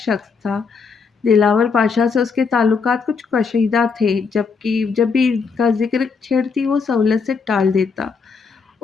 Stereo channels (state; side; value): quieter; right; 5.2 dB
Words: تھا۔ دلاور پاشا سے اس کے تعلقات کچھ کشیدہ تھے، جبکہ جب بھی ان کا ذکر چھیڑتی وہ سہولت سے ٹال دیتا۔